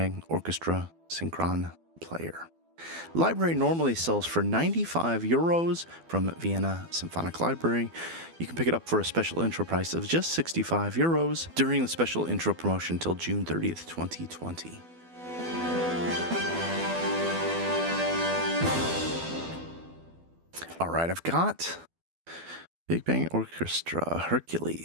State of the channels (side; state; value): left; late; 12 ms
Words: Orchestra Synchron player. Library normally sells for €95 from Vienna Symphonic Library. You can pick it up for a special intro price of just €65 during the special intro promotion until June 30th, 2020. All right, I've got Big Bang Orchestra